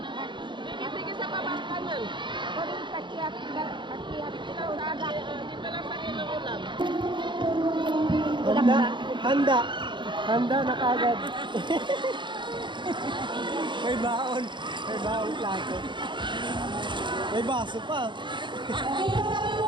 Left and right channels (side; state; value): left; late; 0.23 ms